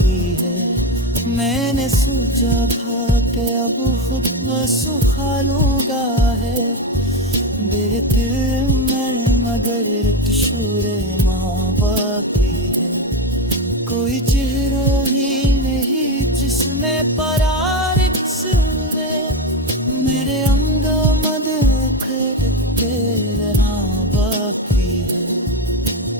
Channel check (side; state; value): both; normal; correlation 0.15